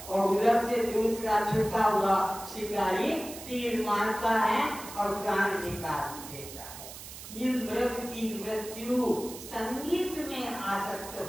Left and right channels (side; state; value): right; noise; hiss, 13 dB below the sound